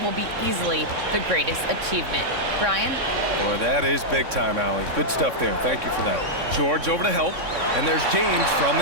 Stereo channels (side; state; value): left; late; 3.6 ms